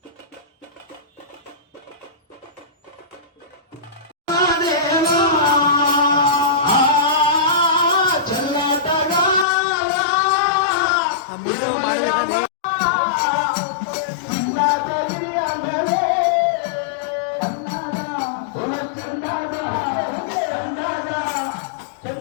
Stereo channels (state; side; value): drops out; right; at 9.5 s